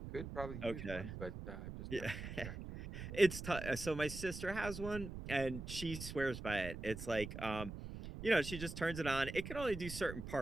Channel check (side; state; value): right; noise; rumble, 8 dB below the sound